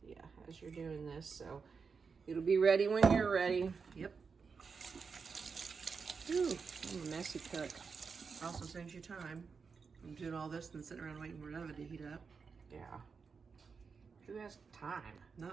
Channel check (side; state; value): left; quieter; 5.4 dB